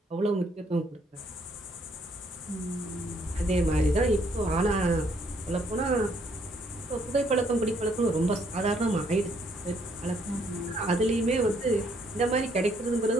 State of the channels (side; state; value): both; normal; correlation 0.69